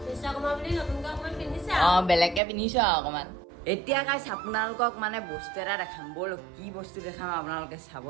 অঁ, বেলেগকৈ পিন্ধিছোঁ আৰু অকণমান। এতিয়া গাইজ আপোনালোকক মানে বস্তু এটা দেখাম। ব'ল, কি বস্তু দেখাম আপোনালোকে চাব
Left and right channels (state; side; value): drops out; left; at 2.4 s